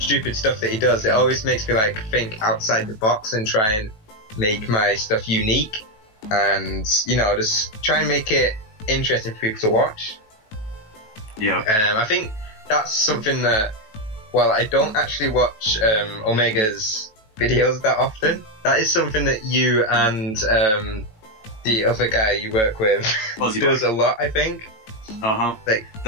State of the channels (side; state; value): right; late; 18 ms